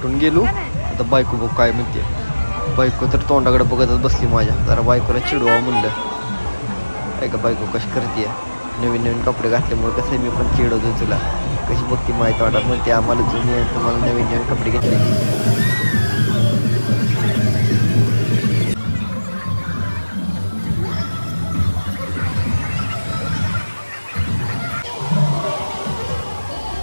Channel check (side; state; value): both; inverted; correlation -1.00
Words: गेलो आता बायको बघ काय म्हणते बायको तर तोंडाकडे बघतच बसली माझ्या जरा बायकोला चिडवा म्हणलं ऐका बायको कशी करते नवीन नवीन कपडे घातल्यामुळे कसं मी पण चिडवतो तुला कशी बघते माहिती वाटत म्हणते आम्हाला जुनी आहे तुम्हाला नवीन नवीन कपडे घेतले